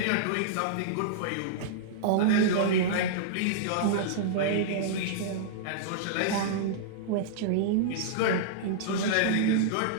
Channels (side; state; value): both; different; correlation -0.02